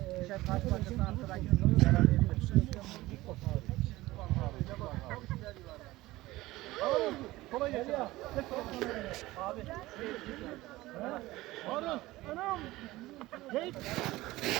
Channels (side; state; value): left; quieter; 18.3 dB